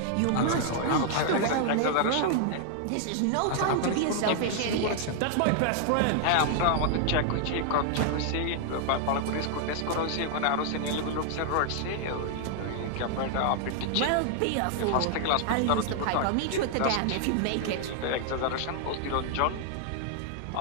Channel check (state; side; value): different; both; correlation 0.00